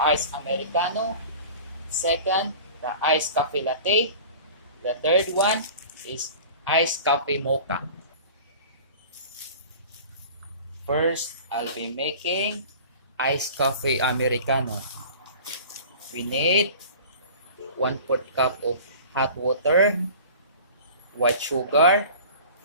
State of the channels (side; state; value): both; inverted; correlation -0.41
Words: Americano. Second, the iced coffee latte. The third one is iced coffee mocha. First, I'll be making iced coffee Americano. We need 1/4 cup of hot water, white sugar,